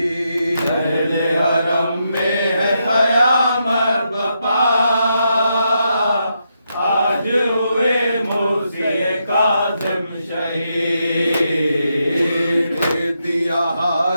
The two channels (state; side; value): inverted; both; correlation -0.82